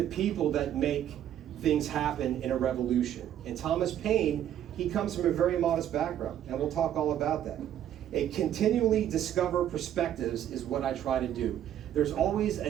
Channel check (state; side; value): quieter; left; 10.9 dB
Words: people, that make things happen in a revolution. And Thomas Paine, he comes from a very modest background, and we'll talk all about that. A continually discover perspectives is what I try to do. There's always